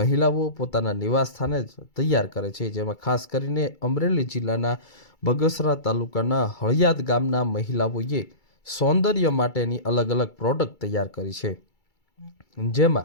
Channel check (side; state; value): right; late; 2.3 ms